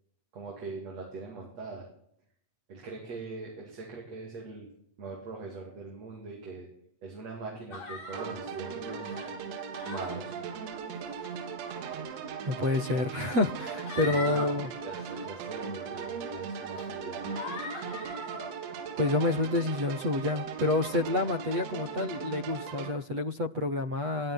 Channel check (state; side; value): late; left; 8.2 ms